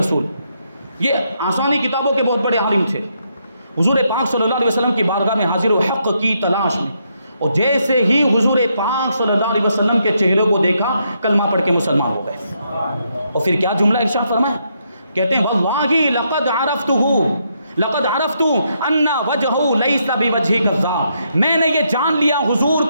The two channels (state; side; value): inverted; both; correlation -0.77